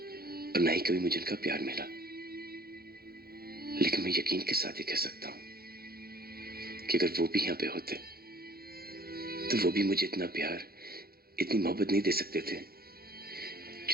न ही कभी मुझे उनका प्यार मिला। लेकिन मैं यकीन के साथ ही कह सकता हूं कि अगर वो भी यहां पे होते तो वो भी मुझे इतना प्यार, इतनी मोहब्बत नहीं दे सकते थे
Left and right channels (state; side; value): late; left; 0.44 ms